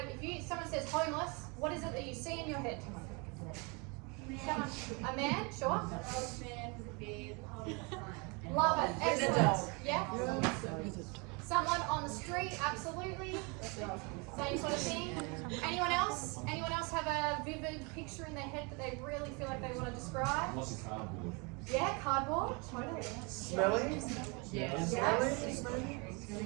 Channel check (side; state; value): left; quieter; 30.7 dB